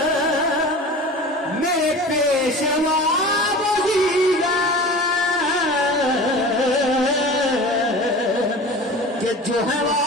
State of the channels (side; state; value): both; normal; correlation 0.37